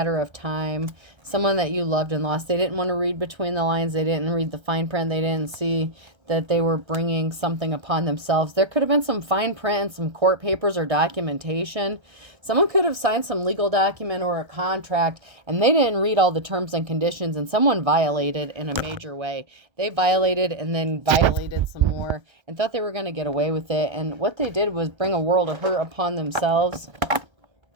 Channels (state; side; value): late; left; 1.3 ms